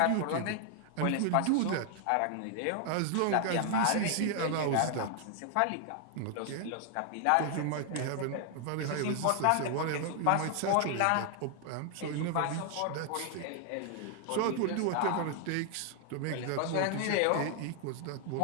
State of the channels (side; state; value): both; different; correlation 0.00